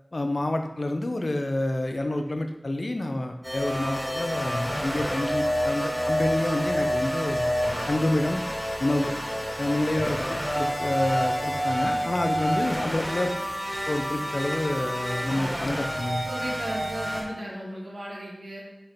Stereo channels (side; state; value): both; normal; correlation 0.98